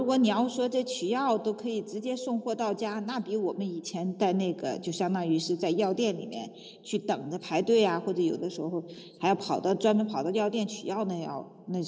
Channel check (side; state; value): both; identical; correlation 1.00